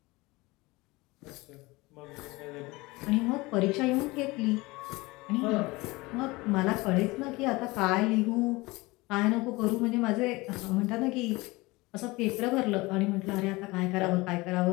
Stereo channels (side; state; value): right; quieter; 22.4 dB